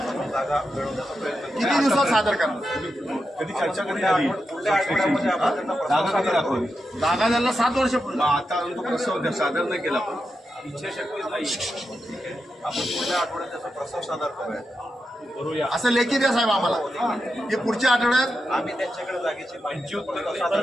जागा मिळवण्याचा प्रयत्न करू. किती दिवसात सादर करणार? कधी चर्चा कधी झाली? पुढल्या आठवड्यामध्ये आपण त्यांना प्रस्ताव सादर करू. जागा द्यायला 7 वर्षापूर्वी. आता तो प्रस्ताव सादर नाही केला पण इच्छाशक्तीच नाही. आपण पुढल्या आठवड्यात त्याचा प्रस्ताव सादर करूया. असं लेखी द्या साहेब आम्हाला की पुढच्या आठवड्यात आम्ही त्यांच्याकडे जागेची माहिती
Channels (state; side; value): normal; both; correlation 0.87